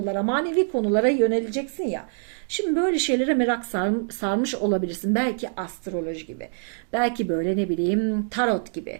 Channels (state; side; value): silent; left; digital silence